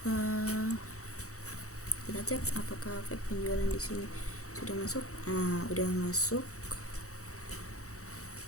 Kita cek apakah efek penjualan di sini sudah masuk. Udah masuk.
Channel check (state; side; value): late; right; 0.65 ms